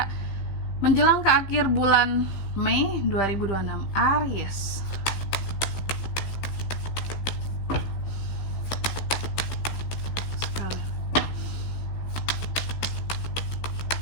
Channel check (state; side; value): late; right; 16 ms